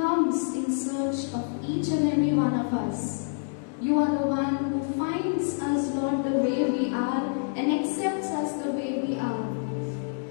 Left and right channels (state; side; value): silent; right; digital silence